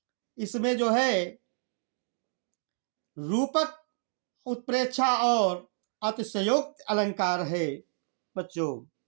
इसमें जो है रूपक उत्प्रेक्षा और अतिशयोक्त अलंकार है बच्चों,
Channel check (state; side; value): silent; left; digital silence